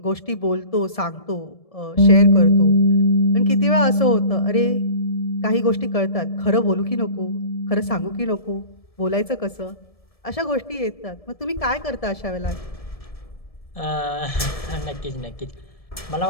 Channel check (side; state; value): right; late; 1.7 ms